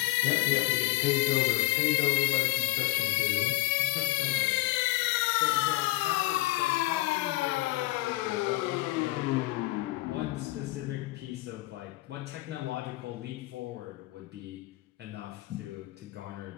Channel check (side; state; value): right; quieter; 19.5 dB